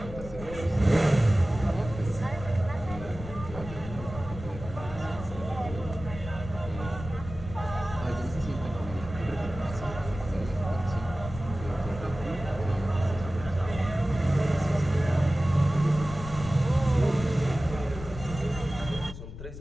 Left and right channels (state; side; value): noise; left; rumble, 11 dB below the sound